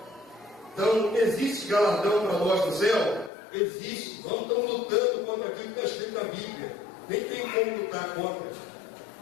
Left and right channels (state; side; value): drops out; right; at 3.3 s